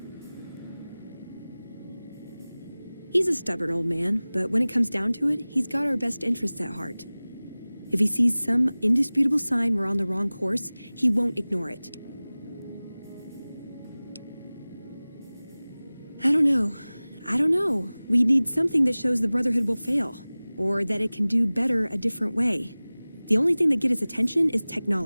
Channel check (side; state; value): both; inverted; correlation -0.99